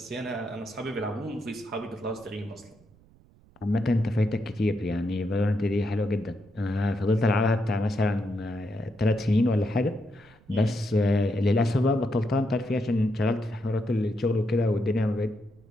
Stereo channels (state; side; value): noise; right; rumble, 28 dB below the sound